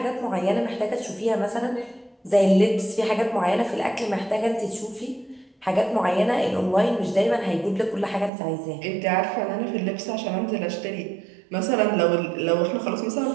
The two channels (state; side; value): drops out; left; at 8.3 s